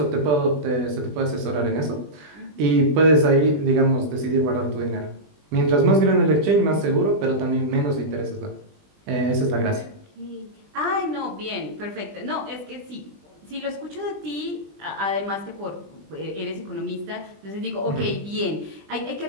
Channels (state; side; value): late; left; 20 ms